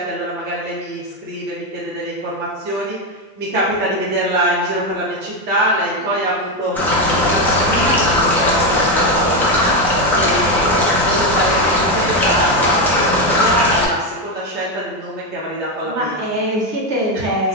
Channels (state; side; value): normal; both; correlation 0.09